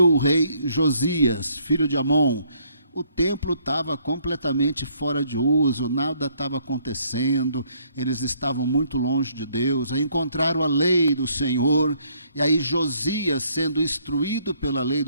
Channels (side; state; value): both; inverted; correlation -0.67